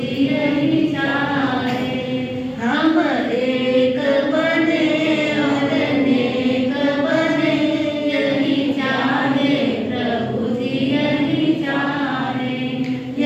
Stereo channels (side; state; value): both; identical; correlation 1.00